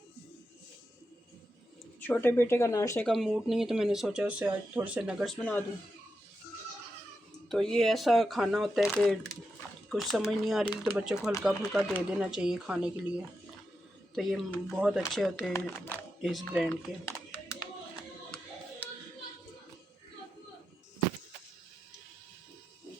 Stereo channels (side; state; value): both; normal; correlation 0.87